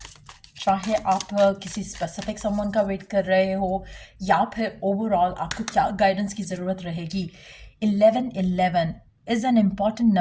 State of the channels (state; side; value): identical; both; correlation 1.00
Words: चाहे आप किसी स्पेसिफिक समवन का वेट कर रहे हो या फिर ओवरऑल आपको क्या गाइडेंस की ज़रूरत रहेगी। 1111 is an important